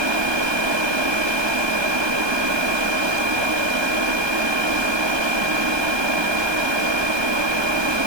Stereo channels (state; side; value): late; left; 1.2 ms